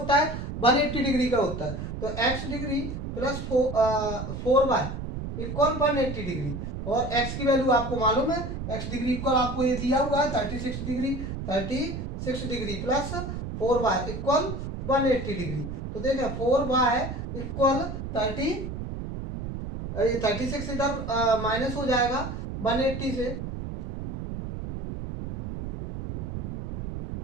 है, 180 डिग्री का होता है। तो x degree plus 4y equal 180 degree, और x की वैल्यू आपको मालूम है, x डिग्री इक्वल आपको ये दिया हुआ है 36 degree. 36 degree plus 4y equal 180 degree. तो देखें 4y इक्वल 36 इधर माइनस हो जाएगा 180 से,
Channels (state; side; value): noise; right; rumble, 6 dB below the sound